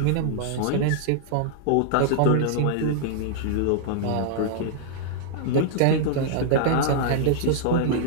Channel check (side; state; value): both; different; correlation -0.02